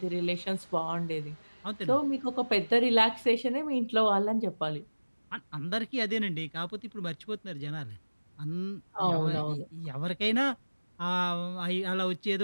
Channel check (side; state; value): both; inverted; correlation -1.00